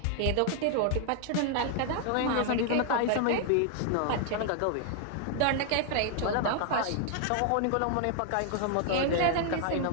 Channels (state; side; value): different; both; correlation 0.00